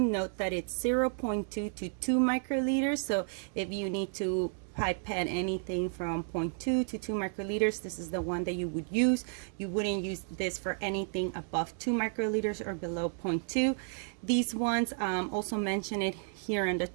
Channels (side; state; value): left; silent; 56 dB below the other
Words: Note that it's 0.2 to 2 microliters. So if you need to pipette anything from 0.2 to 2 microliters, this is the one that you would use. You wouldn't use this for anything above 2 microliters or below 0.2. These ones also mention it here on the